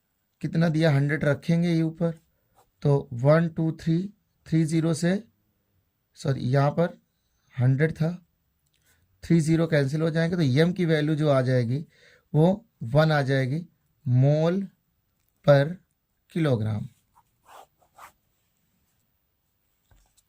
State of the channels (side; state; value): both; identical; correlation 1.00